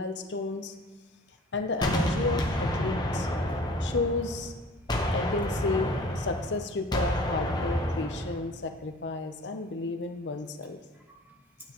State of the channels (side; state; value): both; normal; correlation 0.45